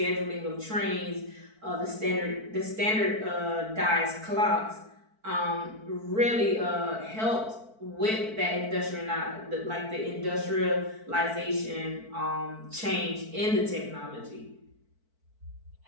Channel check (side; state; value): left; late; 4.5 ms